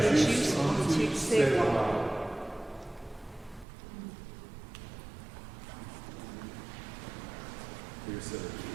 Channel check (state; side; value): drops out; left; at 3.7 s